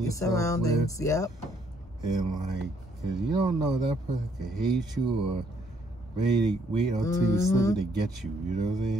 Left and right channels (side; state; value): both; normal; correlation 0.68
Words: yourself surroundings, with. And like, cause you don't know, that person could hate you or wait until you slip to get you. You know what I'm